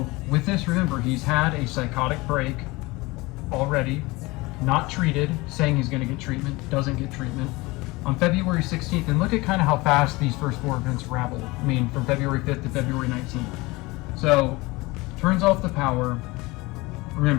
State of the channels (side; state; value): right; quieter; 22.6 dB